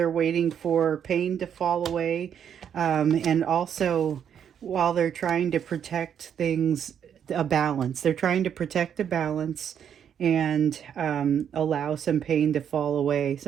waiting for pain to fall away, and also while they're trying to protect things, a balance. They're trying to protect a balance and allow some pain to fall away.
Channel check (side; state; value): left; quieter; 8.6 dB